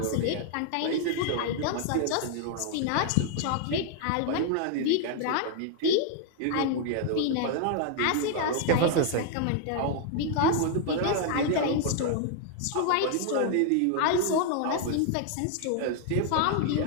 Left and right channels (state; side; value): different; both; correlation 0.00